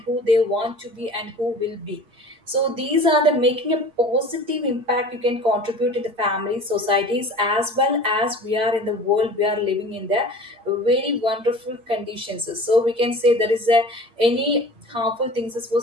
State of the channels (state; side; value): late; left; 8.6 ms